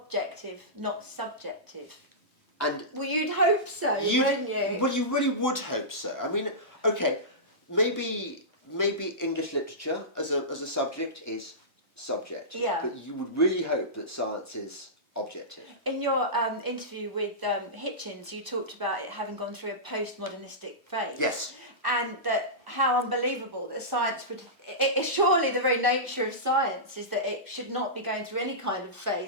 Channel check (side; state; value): both; normal; correlation -0.17